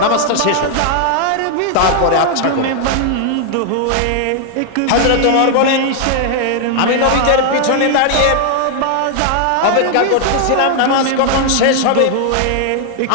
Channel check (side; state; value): both; different; correlation 0.00